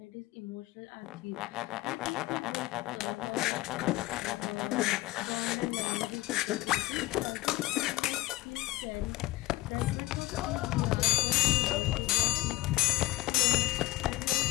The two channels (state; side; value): quieter; right; 18.4 dB